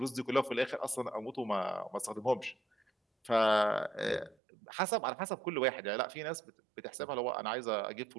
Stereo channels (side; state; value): left; drops out; at 4.4 s